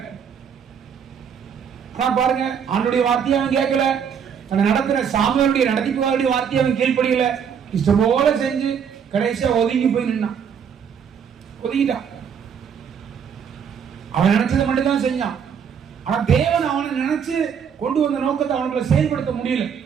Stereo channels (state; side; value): quieter; left; 7.4 dB